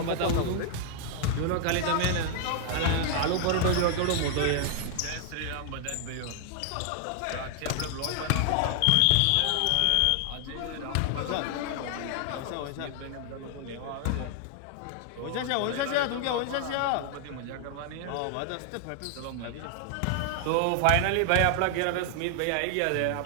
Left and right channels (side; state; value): both; different; correlation 0.00